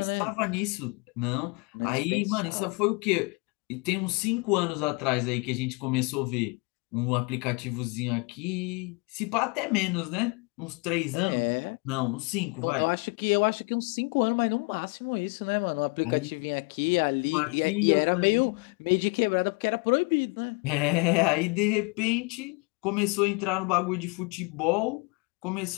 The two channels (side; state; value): right; quieter; 30.2 dB